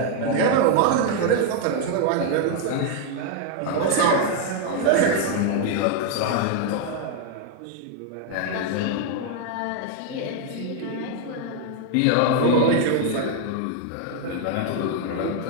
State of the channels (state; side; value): different; both; correlation 0.00